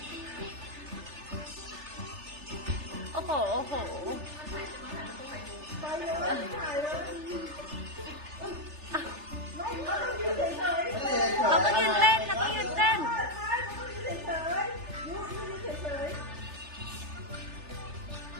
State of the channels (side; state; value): left; late; 3.3 ms